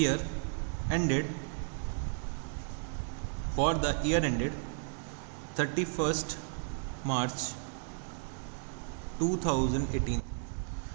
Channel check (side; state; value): left; silent; 55 dB below the other